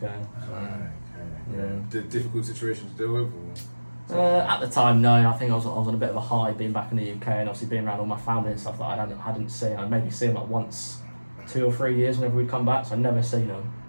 So, yeah. Difficult situation to deal with? At the time, no. I think I was on a bit of a high being back in the UK, and obviously being around all my family and stuff that I hadn't seen. I'd maybe seen like once, 2 or 3 years whenever we'd come back, so I'd never seen them.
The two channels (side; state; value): both; inverted; correlation -1.00